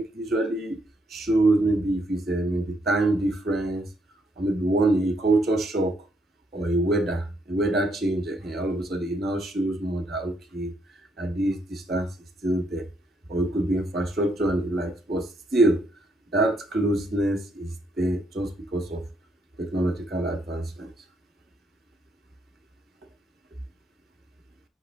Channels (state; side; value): normal; both; correlation 0.74